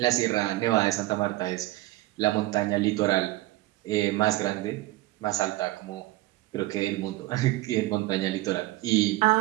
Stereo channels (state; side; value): quieter; left; 18.1 dB